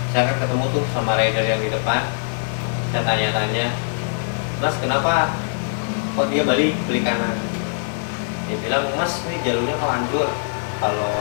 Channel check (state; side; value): silent; right; digital silence